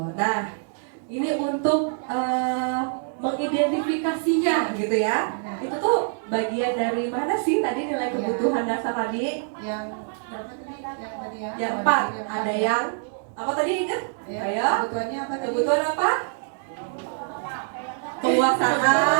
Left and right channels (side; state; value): left; silent; 62 dB below the other